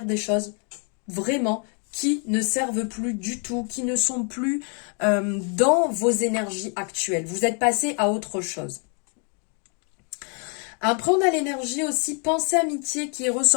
des choses vraiment qui ne servent plus du tout, qui ne sont plus dans vos énergies actuelles. Vous êtes passé à autre chose. Après, on a l'énergie aussi pensée amitié qui est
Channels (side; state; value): right; quieter; 38.9 dB